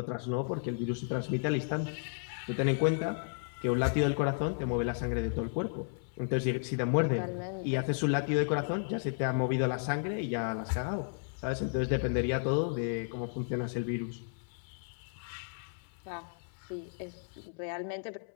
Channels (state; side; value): silent; right; 55 dB below the other